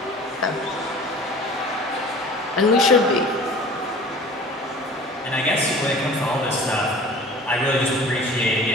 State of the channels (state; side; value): normal; both; correlation 0.43